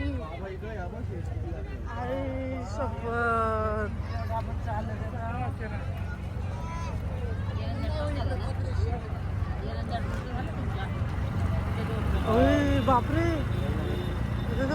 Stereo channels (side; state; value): both; identical; correlation 1.00